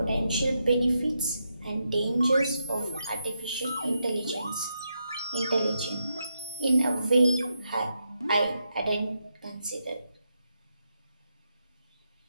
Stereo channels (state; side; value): inverted; both; correlation -0.82